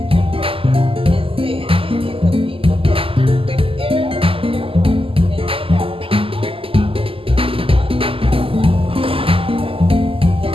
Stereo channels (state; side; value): late; left; 0.26 ms